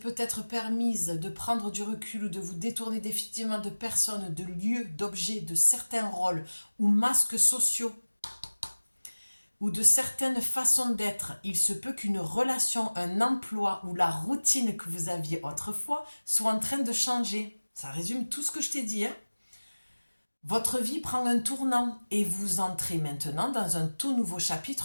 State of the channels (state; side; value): inverted; both; correlation -1.00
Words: peut-être permise de prendre du recul ou de vous détourner définitivement de personnes, de lieux, d'objets, de certains rôles ou masques sociaux ou de certaines façons d'être. Il se peut qu'une relation, un emploi ou la routine que vous aviez autrefois soit en train de changer. Ça résume tout ce que je t'ai dit, hein. Votre vie prend un tournant et vous entrez maintenant dans un tout nouveau